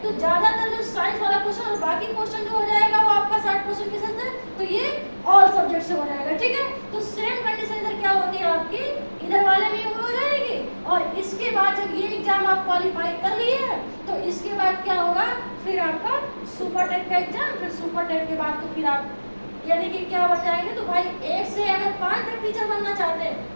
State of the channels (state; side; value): inverted; both; correlation -1.00